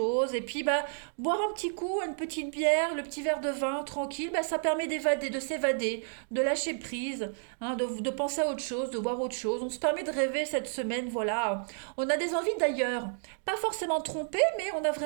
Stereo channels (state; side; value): silent; left; digital silence